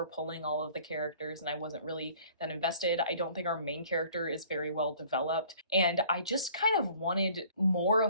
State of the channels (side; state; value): both; inverted; correlation -0.53